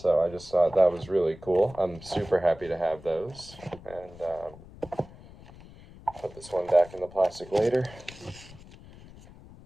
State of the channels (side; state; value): left; noise; rumble, 19 dB below the sound